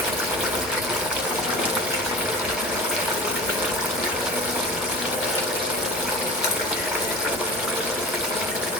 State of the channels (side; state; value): both; normal; correlation 0.35